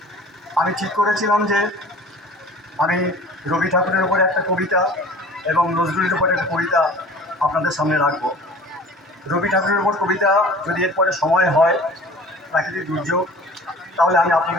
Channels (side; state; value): both; normal; correlation 0.44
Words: আমি ঠিক করেছিলাম যে আমি রবি ঠাকুরের উপরে একটা কবিতা এবং নজরুলের উপরে একটা কবিতা আপনাদের সামনে রাখব। রবি ঠাকুরের উপর কবিতা যদি এরপরে সময় হয়, প্রাকৃতিক দুর্যোগ, তাহলে আমি